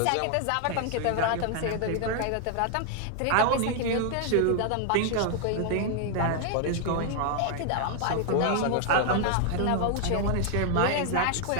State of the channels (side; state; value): both; different; correlation 0.00